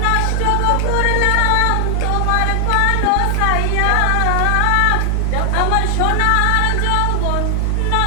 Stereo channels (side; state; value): both; different; correlation 0.00